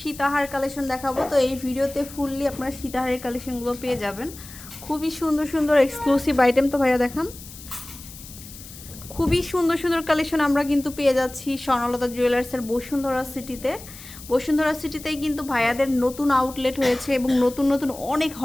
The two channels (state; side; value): noise; left; hiss, 16 dB below the sound